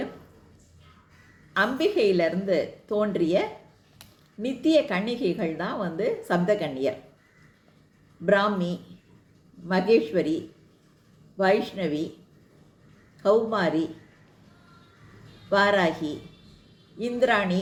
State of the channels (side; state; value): both; identical; correlation 1.00